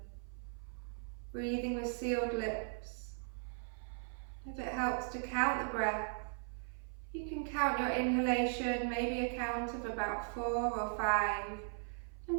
Breathing with sealed lips. If it helps to count the breath, you can count your inhalation, maybe a count of about 4 or 5. And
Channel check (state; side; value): silent; left; 52 dB below the other